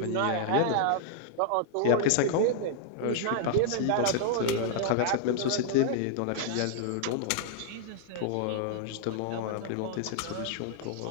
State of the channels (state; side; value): different; both; correlation -0.01